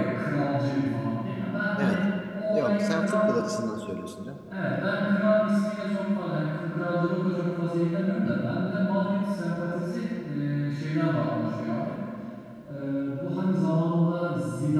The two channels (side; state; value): both; identical; correlation 1.00